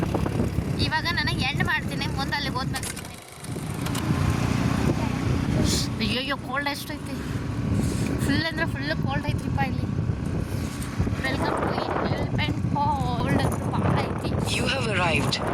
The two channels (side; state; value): both; identical; correlation 1.00